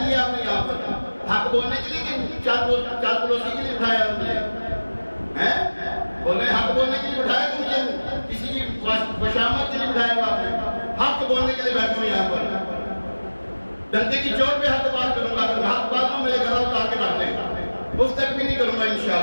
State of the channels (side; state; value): both; inverted; correlation -1.00